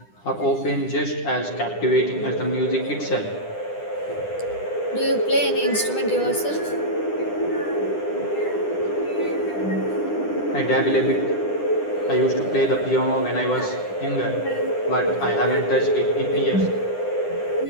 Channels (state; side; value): late; right; 10 ms